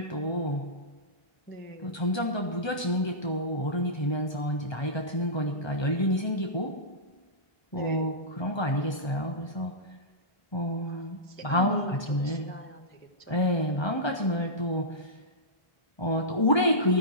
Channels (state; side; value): late; right; 1.3 ms